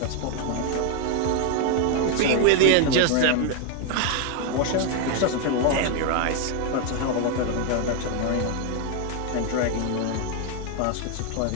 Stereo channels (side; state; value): both; different; correlation 0.01